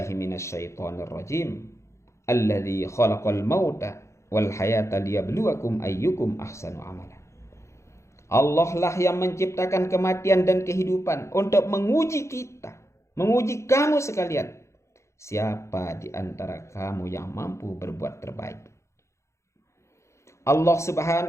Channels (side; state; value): right; late; 0.14 ms